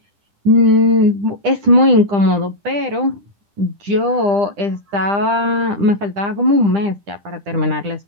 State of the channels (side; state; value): left; late; 10 ms